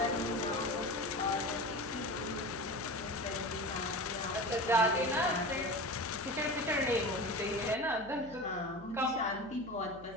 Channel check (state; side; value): noise; left; hum, 20 dB below the sound